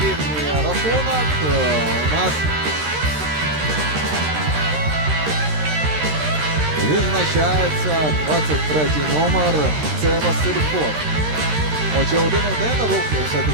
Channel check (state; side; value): late; left; 13 ms